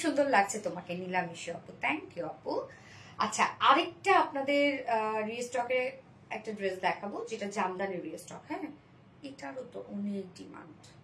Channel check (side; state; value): both; identical; correlation 1.00